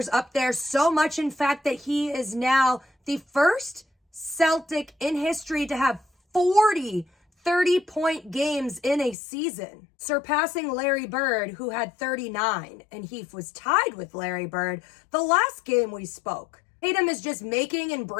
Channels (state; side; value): drops out; right; at 9.2 s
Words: up there so much, in fact, that he is now the first Celtic in history to have 40 30-point games in a season, surpassing Larry Bird, who had 39, and he was tied with Larry Bird the last game we spoke. Tatum is just making and